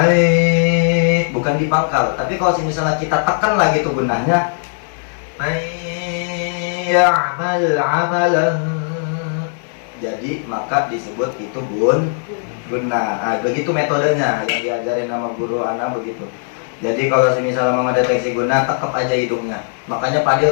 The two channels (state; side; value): silent; right; digital silence